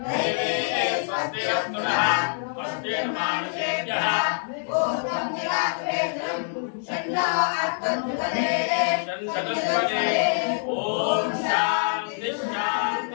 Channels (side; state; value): right; silent; digital silence